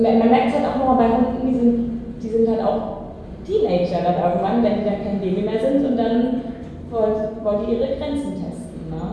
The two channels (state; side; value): identical; both; correlation 1.00